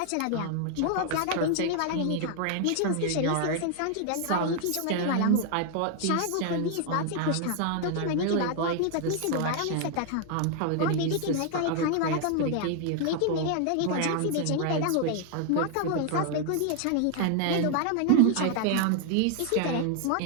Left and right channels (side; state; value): both; different; correlation 0.00